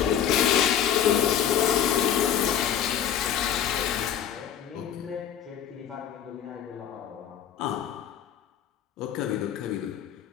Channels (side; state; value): right; quieter; 9.4 dB